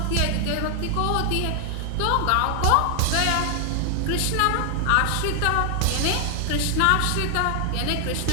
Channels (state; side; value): different; both; correlation 0.00